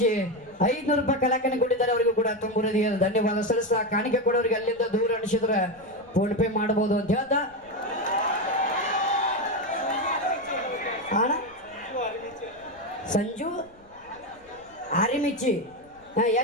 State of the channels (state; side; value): noise; left; rumble, 29 dB below the sound